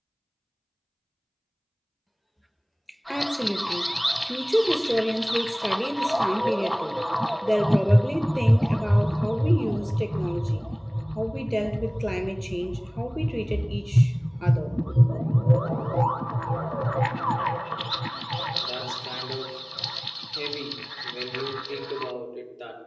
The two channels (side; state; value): both; identical; correlation 1.00